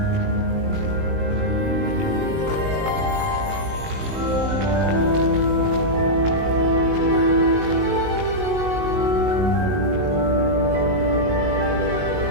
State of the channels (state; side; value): late; left; 19 ms